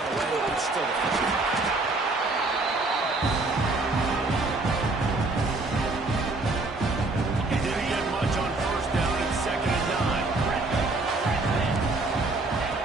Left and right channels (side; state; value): left; quieter; 3.2 dB